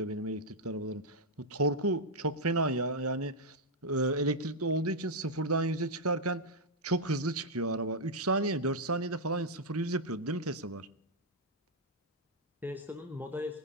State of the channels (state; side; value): normal; both; correlation -0.03